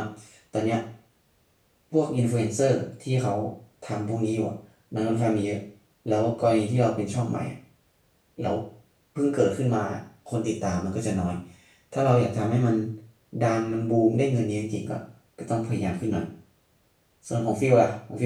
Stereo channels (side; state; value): both; identical; correlation 1.00